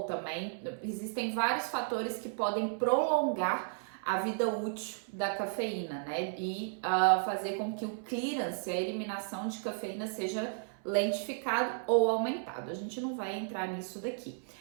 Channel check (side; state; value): left; silent; 55 dB below the other